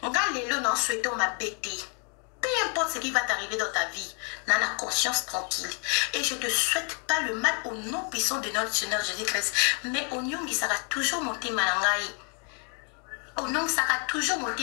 Ngalelo non souhaitons ma bêtise. Peu importe ce qui va t'arriver dans ta vie, n'a la conscience tranquille. Et je ne te souhaite pas le mal au nom puissant de notre Seigneur Jésus-Christ. Mais au nom qui sera toujours monté manangai. Au nom qui sera toujours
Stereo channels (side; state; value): right; quieter; 38.6 dB